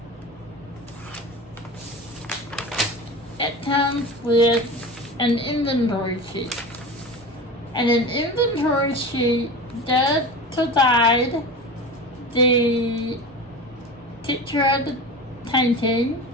it comes with an inventory sheet. And an inventory sheet does provide the picture of the painting.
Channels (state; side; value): normal; both; correlation 0.31